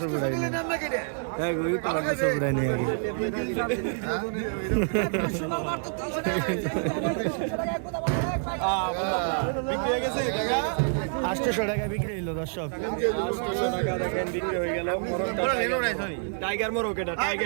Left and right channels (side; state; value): left; silent; 57 dB below the other